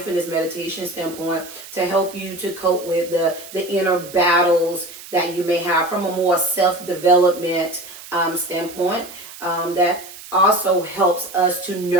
meditation standpoint to help you to cope with the inner battles that you may have from a more self-development standpoint that also helps us to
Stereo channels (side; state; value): right; noise; hiss, 16 dB below the sound